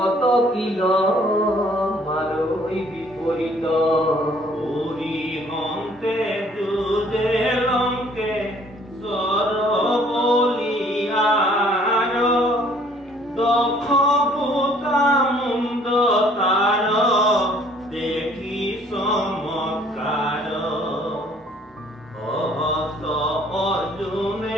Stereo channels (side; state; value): both; normal; correlation 0.59